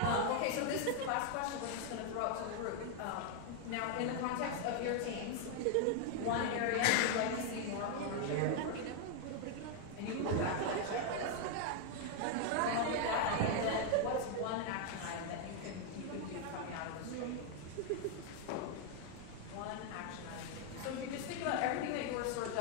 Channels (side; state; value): both; different; correlation 0.00